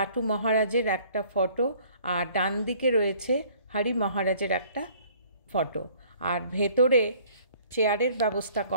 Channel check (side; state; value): both; inverted; correlation -0.56